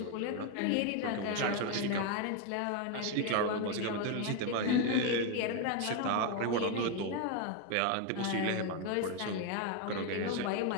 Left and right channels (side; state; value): both; different; correlation 0.02